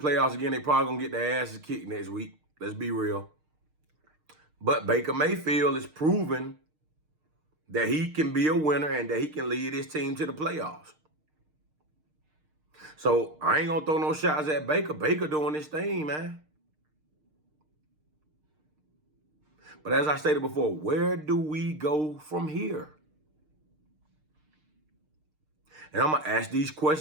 again. They probably going to get their asses kicked next week. Let's be real. But Baker Mayfield is proving that he can be a winner and that he can lead his team to the playoffs. So I ain't going to throw no shots at Baker. Baker doing this thing, man. But as I stated before, where do we go from here? And I'm going to ask these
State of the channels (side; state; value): left; late; 6.5 ms